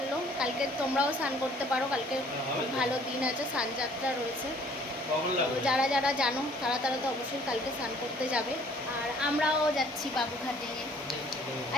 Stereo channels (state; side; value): normal; both; correlation 0.57